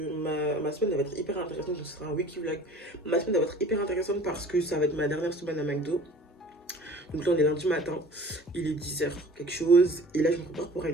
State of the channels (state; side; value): normal; both; correlation 0.46